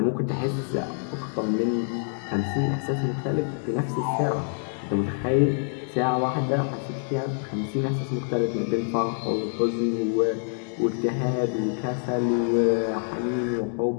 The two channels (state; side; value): silent; right; 61 dB below the other